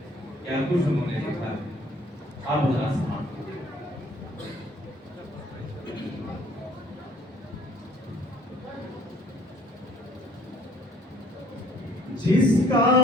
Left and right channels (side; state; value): both; normal; correlation 0.59